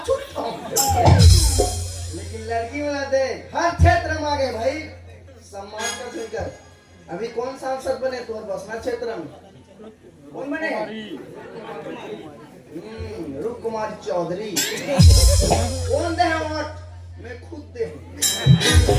ठोक लेकिन लड़की वाला दे हर क्षेत्र में आगे भाई सम्मान का सुनकर अभी कौन सांसद बने तुम्हारे बसना क्षेत्र में कौन बने रूप कुमार चौधरी कौन दे वोट मैं खुद दे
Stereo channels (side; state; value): both; identical; correlation 1.00